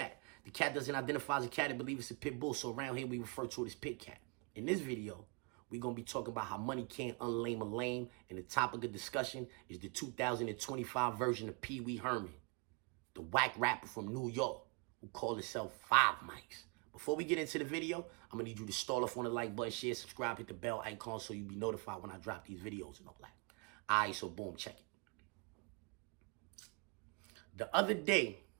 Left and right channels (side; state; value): left; quieter; 32.6 dB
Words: The cat doesn't identify as a cat and believe it's a pit bull, so around here we refer to it as pit cat. In this video, we're going to be talking about how money can't unlame a lame, and the topic of discussion is the 2025 version of Pee Wee Herman, the whack rapper from New York who called himself 5 Mics. Before we get into the video, I'm going to need you to start off on the like button, share, subscribe, hit the bell icon so you'll be notified when I drop these videos and all that. All right, so boom, check it. The other day,